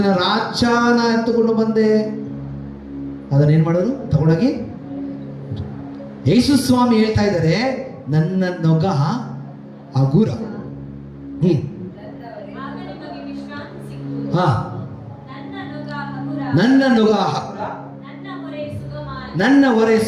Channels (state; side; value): identical; both; correlation 1.00